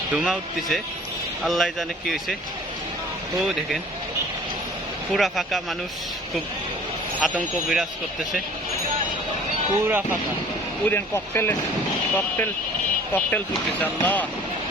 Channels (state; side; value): normal; both; correlation 0.49